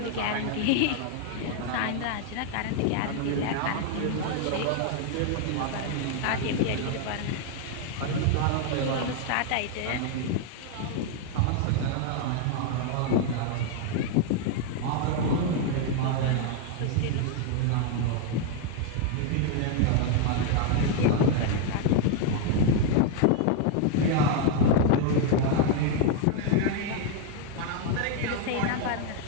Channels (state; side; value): different; both; correlation 0.01